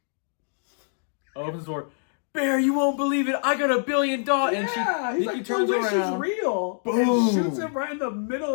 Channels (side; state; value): right; silent; digital silence